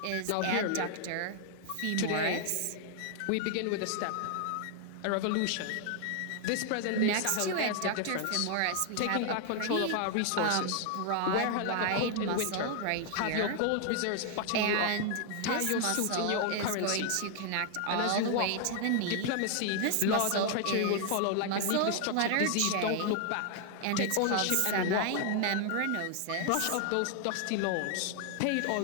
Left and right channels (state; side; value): different; both; correlation 0.00